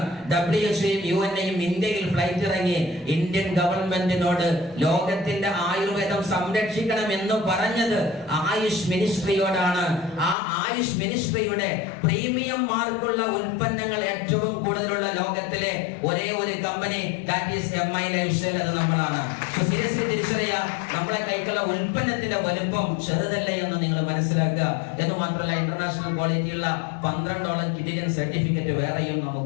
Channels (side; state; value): right; drops out; at 10.4 s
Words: WHO-യും UN-യും ഇന്ത്യയിൽ ഫ്ലൈറ്റ് ഇറങ്ങി ഇന്ത്യൻ ഗവൺമെന്റിനോട് ലോകത്തിന്റെ ആയുർവേദം സംരക്ഷിക്കണം എന്ന് പറഞ്ഞത് ആയുഷ് മിനിസ്ട്രിയോടാണ്. ആ ആയുഷ് മിനിസ്ട്രിയുടെ പ്രീമിയം മാർക്കുള്ള ഉൽപ്പന്നങ്ങൾ ഏറ്റവും കൂടുതലുള്ള ലോകത്തിലെ ഒരേ ഒരു company that is MI life style, അത് നമ്മളാണ്. സീരിയസ്ലി തിരിച്ചറിയുക, നമ്മളെ കൈക്കുള്ള ഉൽപ്പന്നത്തിന്റെ വലുപ്പം ചെറുതല്ല എന്ന് നിങ്ങൾ മനസ്സിലാക്കുക. എന്ന് മാത്രമല്ല, ഇന്റർനാഷണൽ ക്വാളിറ്റിയുള്ള 12ഓളം കിഡിയൻ സർട്ടിഫിക്കറ്റ് വേറെയും